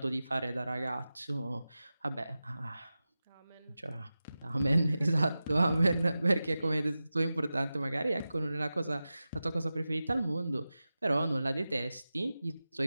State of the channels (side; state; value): both; inverted; correlation -0.94